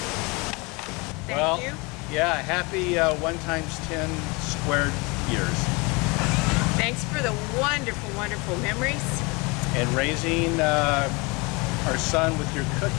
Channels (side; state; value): right; quieter; 27.5 dB